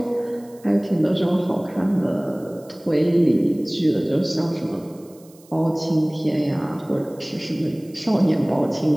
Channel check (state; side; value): noise; right; hiss, 27 dB below the sound